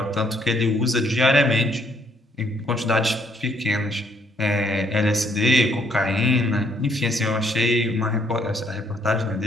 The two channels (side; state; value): both; normal; correlation 0.68